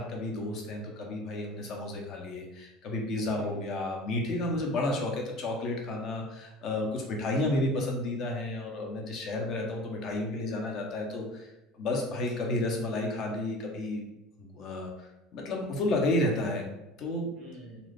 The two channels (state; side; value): normal; both; correlation 0.40